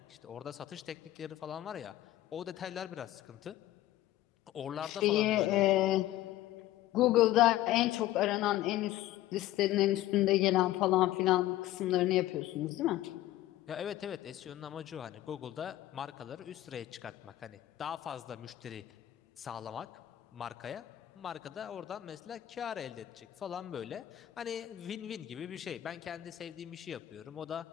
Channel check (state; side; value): quieter; right; 14.5 dB